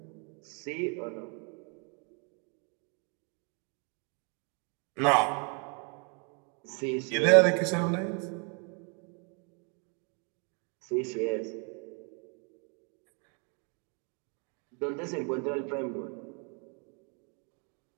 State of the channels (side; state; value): left; quieter; 36.8 dB